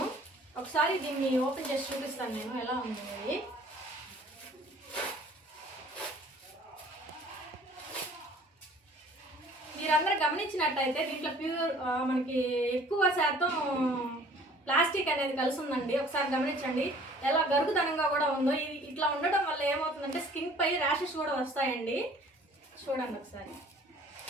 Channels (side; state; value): both; normal; correlation 0.52